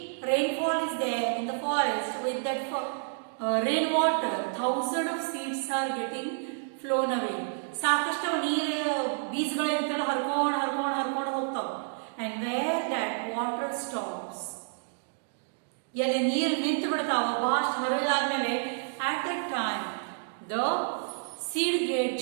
rainfall is there in the forest, with that rainwater, thousands of seeds are getting flown away. ಸಾಕಷ್ಟು ನೀರು ಬೀಜಗಳು ಇರ್ತಲ್ಲ ಹರ್ಕೊಂಡು ಹರ್ಕೊಂಡು ಹರ್ಕೊಂಡು ಹೋಗ್ತಾವ. And where that water stops, ಎಲ್ಲಿ ನೀರು ನಿಂತು ಬಿಡ್ತಾವ ಬಹಳಷ್ಟು ಹರಿದಾದ್ಮೇಲೆ, at that time the seed get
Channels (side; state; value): left; silent; digital silence